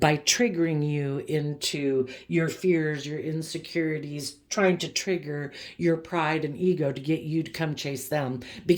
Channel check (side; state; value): both; identical; correlation 1.00